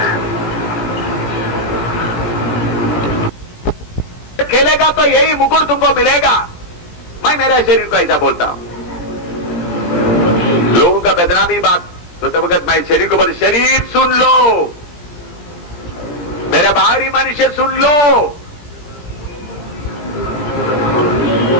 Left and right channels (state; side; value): late; right; 17 ms